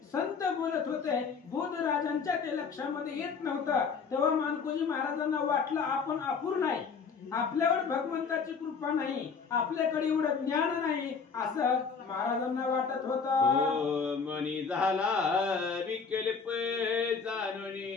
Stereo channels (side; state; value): right; quieter; 5.5 dB